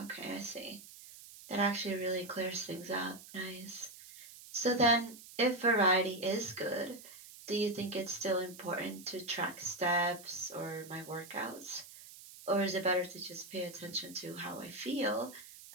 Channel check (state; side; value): noise; right; hiss, 17 dB below the sound